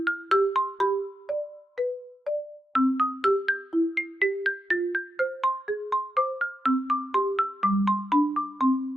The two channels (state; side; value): normal; both; correlation 0.88